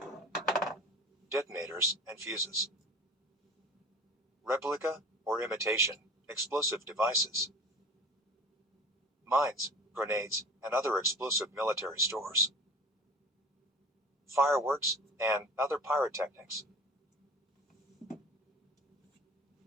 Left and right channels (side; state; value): both; normal; correlation 0.39